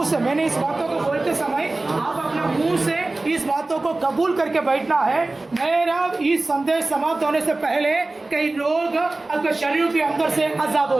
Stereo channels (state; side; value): quieter; left; 3.1 dB